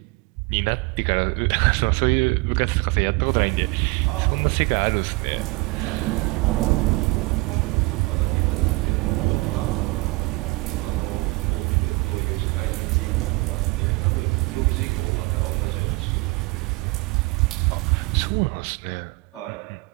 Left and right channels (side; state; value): left; quieter; 24.7 dB